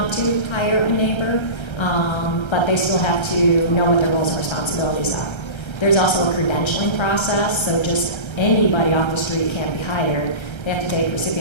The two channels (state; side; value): late; right; 1.3 ms